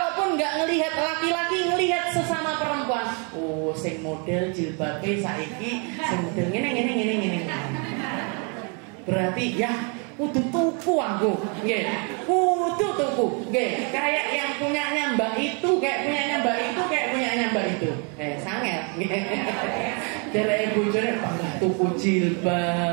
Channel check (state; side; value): quieter; left; 36.1 dB